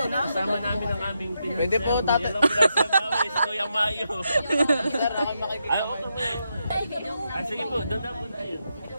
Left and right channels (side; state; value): both; inverted; correlation -0.83